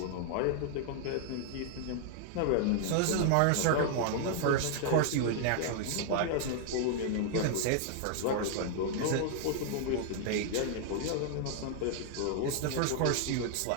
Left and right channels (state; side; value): different; both; correlation -0.01